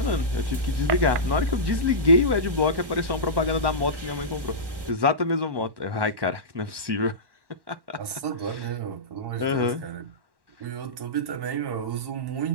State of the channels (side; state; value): left; late; 1.1 ms